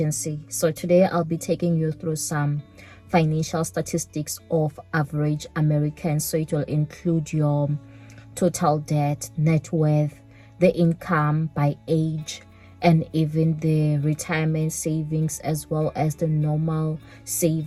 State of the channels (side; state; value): both; identical; correlation 1.00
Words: So today I'll be taking you through some financial statistics of average Americans. So it will include your total debt, net worth, the income by age, and even the retirement savings, as well as the normal